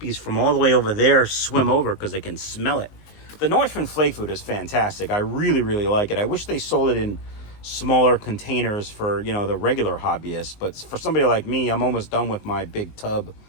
from all the way over there swim over because they can smell it. The Northern flake food is fantastic. I really, really like it. I wish they sold it in smaller containers for, you know, the regular hobbyists. But for somebody like me, I'm almost done with my big tub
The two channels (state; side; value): late; right; 19 ms